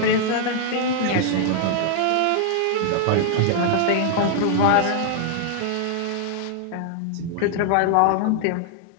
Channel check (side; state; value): both; different; correlation -0.01